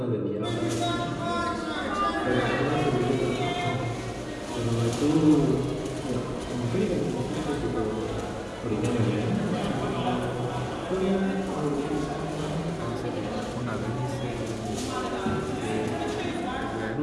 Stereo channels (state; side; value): identical; both; correlation 1.00